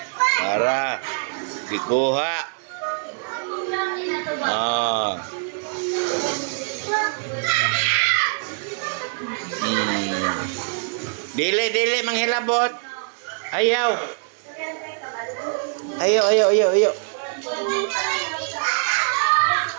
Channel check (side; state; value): left; silent; 63 dB below the other